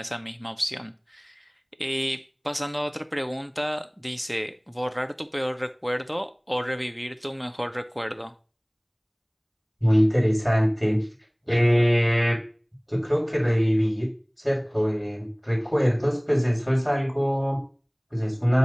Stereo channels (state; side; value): identical; both; correlation 1.00